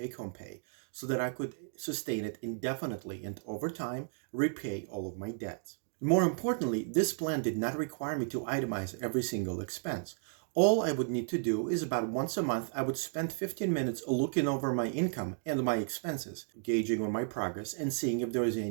pay so that I could sustain it indefinitely and over time repay all of my debts. More importantly, this plan did not require me to itemize every single expense. All I would need to do is about once a month, I would spend 15 minutes looking over my income and my expenses, gauging on my progress and seeing if there was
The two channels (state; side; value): silent; left; digital silence